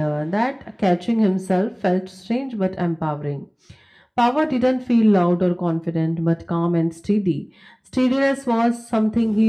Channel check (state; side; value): identical; both; correlation 1.00